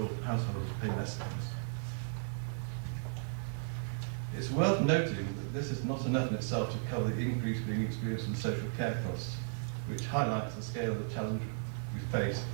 households pay less than this. It's worth noting that this is not enough in itself to cover the increase being experienced in social care costs, which highlights the scale of the challenge we face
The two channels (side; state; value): left; silent; 54 dB below the other